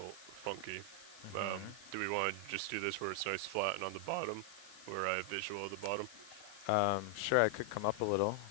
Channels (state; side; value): noise; left; hiss, 20 dB below the sound